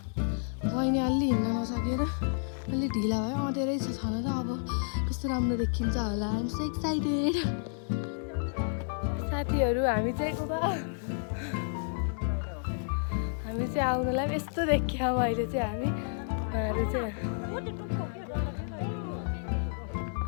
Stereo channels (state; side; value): silent; right; 57 dB below the other